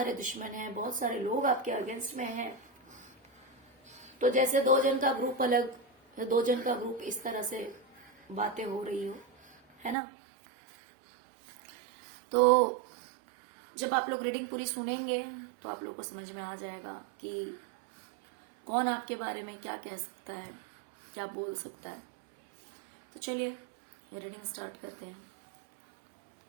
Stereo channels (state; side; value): drops out; left; at 10.0 s